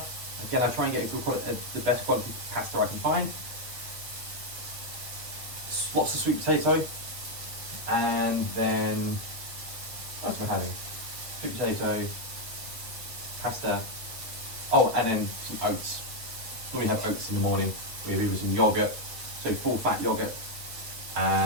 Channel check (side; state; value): left; late; 8.1 ms